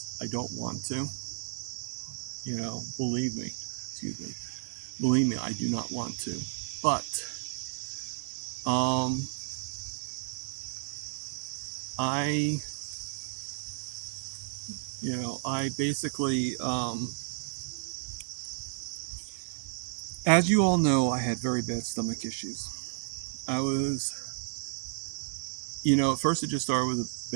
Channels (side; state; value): left; silent; digital silence